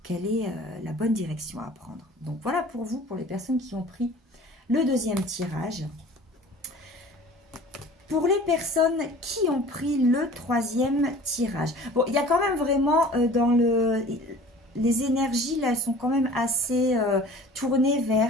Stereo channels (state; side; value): normal; both; correlation 0.45